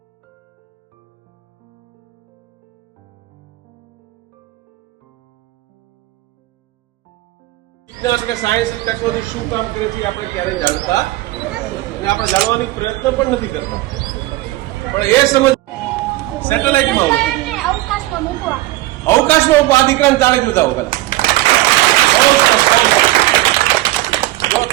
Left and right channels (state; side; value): quieter; left; 18.0 dB